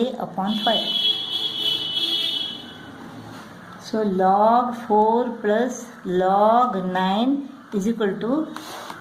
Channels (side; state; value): both; identical; correlation 1.00